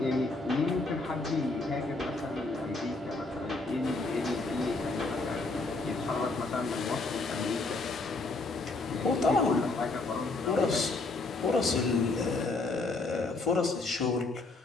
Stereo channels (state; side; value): quieter; right; 3.4 dB